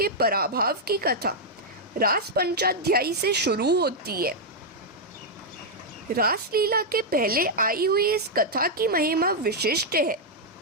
पराभव की कथा रास पंचाध्यायी से शुरू होती है। रासलीला के पहले आई हुई इस कथा की महिमा विशिष्ट है।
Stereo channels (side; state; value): both; normal; correlation -0.04